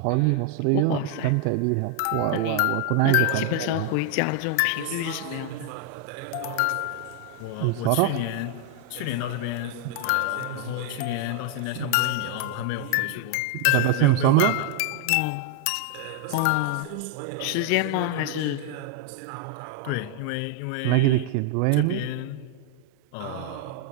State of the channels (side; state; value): both; different; correlation 0.00